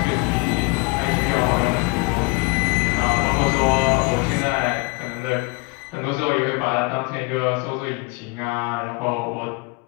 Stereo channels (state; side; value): quieter; right; 27.6 dB